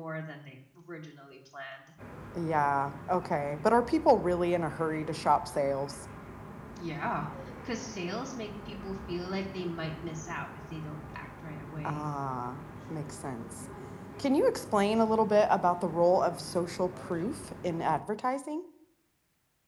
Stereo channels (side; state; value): both; identical; correlation 1.00